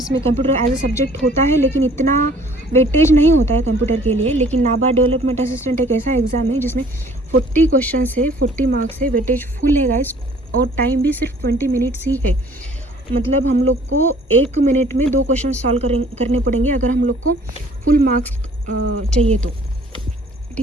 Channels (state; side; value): normal; both; correlation 0.55